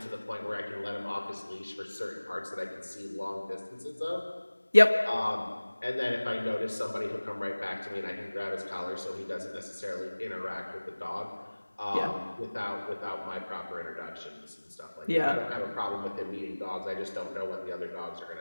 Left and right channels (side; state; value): both; inverted; correlation -1.00